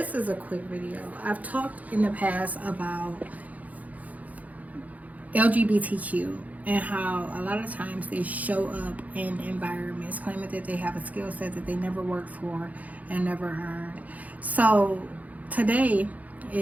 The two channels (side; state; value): left; late; 0.075 ms